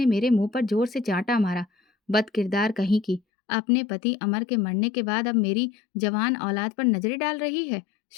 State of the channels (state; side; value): drops out; right; at 3.2 s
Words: मेरे मुंह पर जोर से चांटा मारा। बदकिरदार कहीं की, अपने पति अमर के मरने के बाद अब मेरी जवान औलाद पर नजरें डाल रही है।